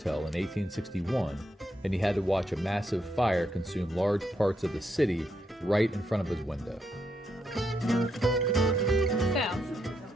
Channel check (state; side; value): normal; both; correlation 0.80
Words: in 1861, and he had to watch a massive fire consume large parts of the city right in front of his window. So,